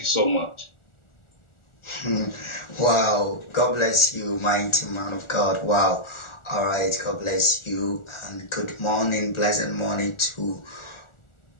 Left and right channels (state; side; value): late; right; 1.4 ms